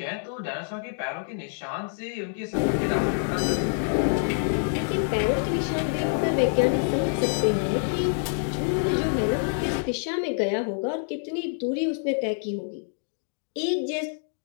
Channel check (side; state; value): right; silent; digital silence